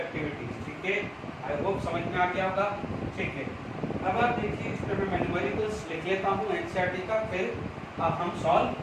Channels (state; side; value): identical; both; correlation 1.00